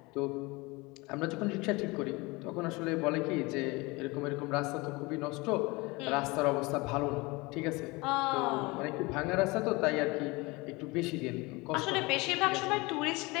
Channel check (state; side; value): quieter; right; 24.4 dB